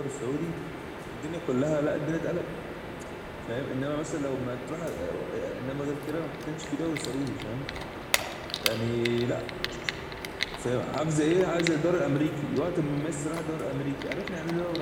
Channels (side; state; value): both; identical; correlation 1.00